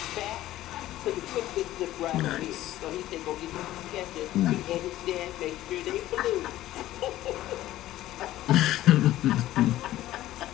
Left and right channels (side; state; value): right; quieter; 14.7 dB